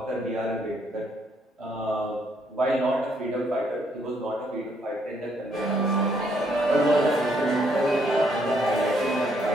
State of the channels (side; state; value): both; normal; correlation 0.71